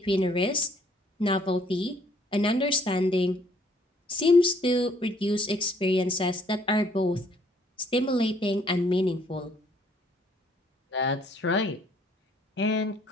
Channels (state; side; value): normal; both; correlation 0.64